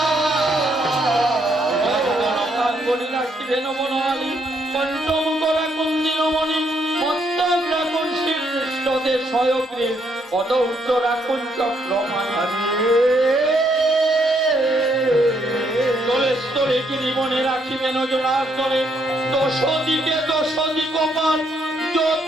রাখিবেন বনমালী পঞ্চম করা কুন্দিনমণি মস্তক রাখুন শ্রীকৃষ্ণদের সয়গ্রীব পদৌর্ধ রাখুন চক্রমাণী স্থলে গিরিবনে রাখিবেন জোড়াস্তরে দশ দিকপাল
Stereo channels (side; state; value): both; normal; correlation 0.73